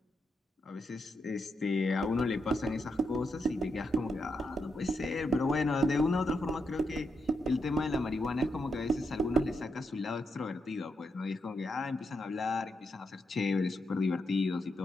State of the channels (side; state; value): both; normal; correlation 0.82